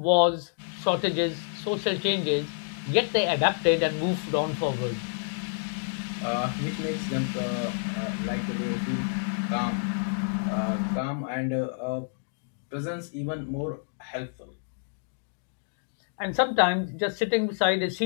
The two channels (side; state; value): right; silent; digital silence